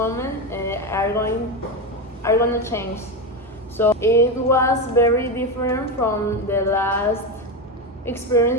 are going to change. So it was very different from the last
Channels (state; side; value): normal; both; correlation 0.15